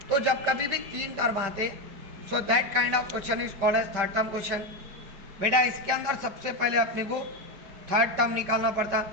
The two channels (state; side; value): late; left; 5.4 ms